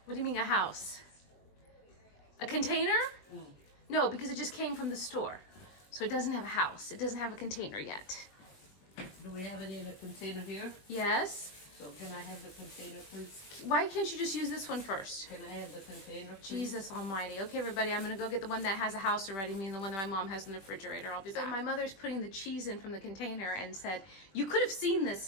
What do you mean a house? A container? No, because it just came from the store. So it doesn't have a house. It doesn't have a container yet. Do we have it in a container here? Yes. So can I have the container, please? Why can't you just use this one first? Can I have the container, please? Jesus almighty. Okay, everybody, I'm gonna go get the one that has a house already, meaning the one that my mom has in the refrigerator. I'll be back. So my mother's putting the cheese in from the container and said, you could have seen this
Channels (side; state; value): right; late; 21 ms